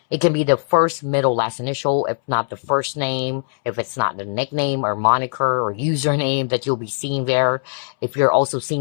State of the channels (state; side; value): silent; right; 66 dB below the other